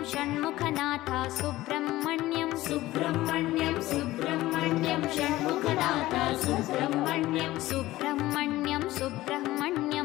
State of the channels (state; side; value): quieter; right; 16.8 dB